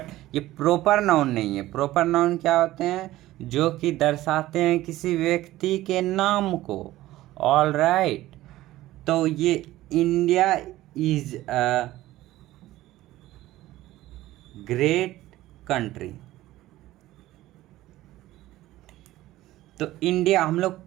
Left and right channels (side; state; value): left; quieter; 16.0 dB